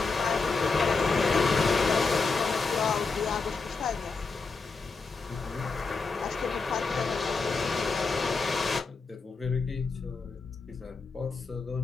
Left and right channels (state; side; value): quieter; right; 4.3 dB